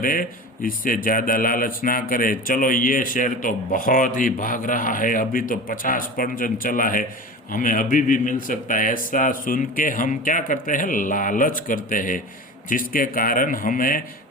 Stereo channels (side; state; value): both; normal; correlation 0.32